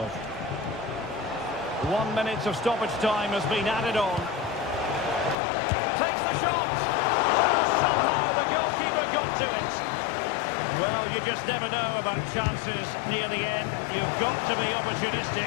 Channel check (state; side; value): drops out; right; at 5.4 s